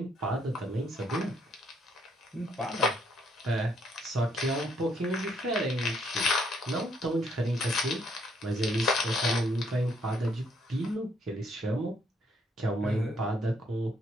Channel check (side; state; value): both; normal; correlation 0.70